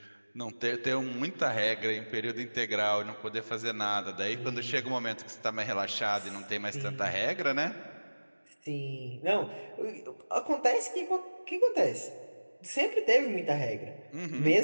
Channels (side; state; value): both; inverted; correlation -1.00